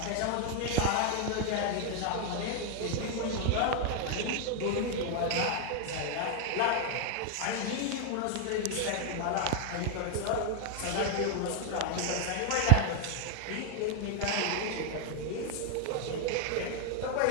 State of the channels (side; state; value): both; different; correlation 0.00